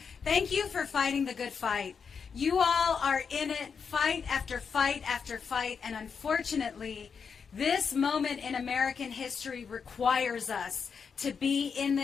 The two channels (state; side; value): quieter; right; 6.1 dB